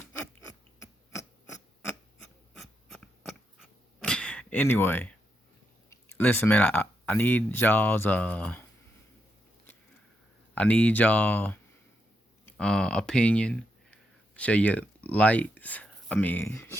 Anyway, listen, man, I need y'all's opinion. Share your likes.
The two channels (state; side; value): normal; both; correlation 0.82